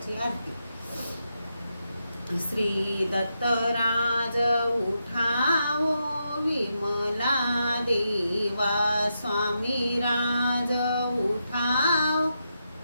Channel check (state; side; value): inverted; both; correlation -0.84